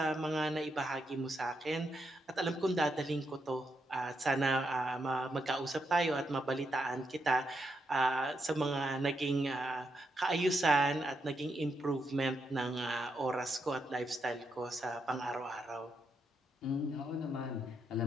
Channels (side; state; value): both; normal; correlation 0.81